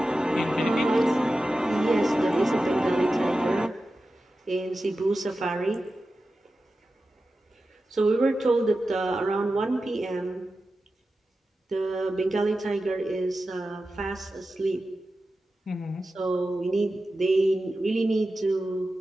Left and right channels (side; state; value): both; normal; correlation 0.93